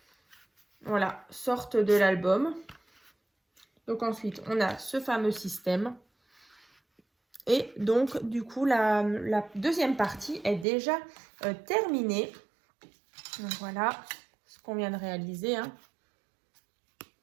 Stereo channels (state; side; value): drops out; left; at 10.7 s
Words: voilà, sorte de l'album. Donc, ensuite, on a ce fameux système. Et donc, du coup, la deuxième partie est déjà terminée. Donc, voilà ce qu'on vient de réaliser. Hein.